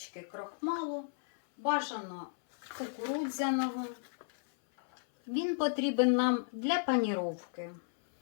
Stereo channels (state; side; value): silent; right; 55 dB below the other